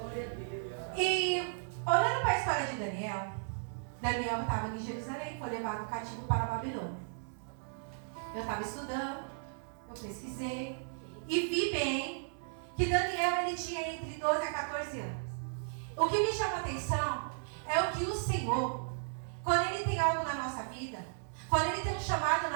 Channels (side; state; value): left; silent; digital silence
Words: E olhando para a história de Daniel estava em Jerusalém, foi levado cativo para a Babilônia. Eu estava estudando, eu pesquisei e vi bem que Daniel ele tinha entre 12 a 14 anos. O que me chama a atenção é o que o Senhor, quando Ele tem algo na nossa vida, quando Ele tem um chamado